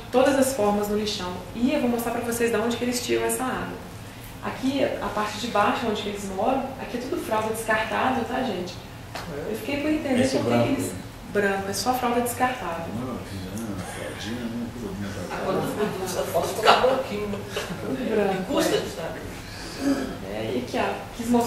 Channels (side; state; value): both; identical; correlation 1.00